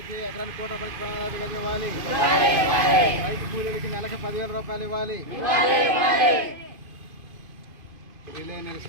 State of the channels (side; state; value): left; late; 2.5 ms